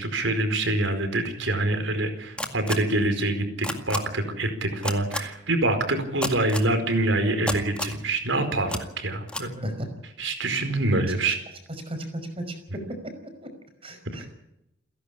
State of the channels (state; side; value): normal; both; correlation 0.36